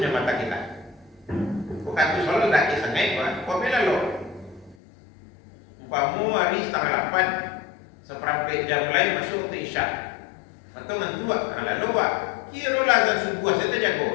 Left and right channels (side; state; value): right; drops out; at 4.8 s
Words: mata kita. Bukan tu soal lelaki sangat Pak. Kau bela lo. Umpamu hari 7:30, seperempat jam lain masuk ke isya. Atau ngantuk karena lalu Pak. Kira lah azan subuh saya